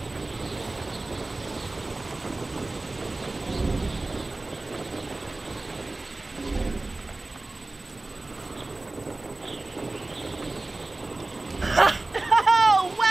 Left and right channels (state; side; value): quieter; left; 3.0 dB